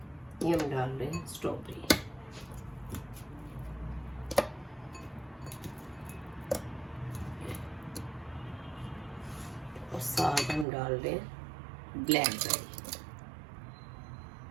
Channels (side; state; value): left; drops out; at 10.7 s